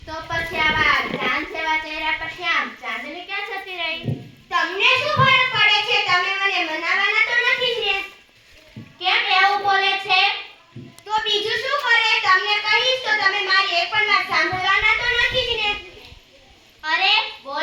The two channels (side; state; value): both; identical; correlation 1.00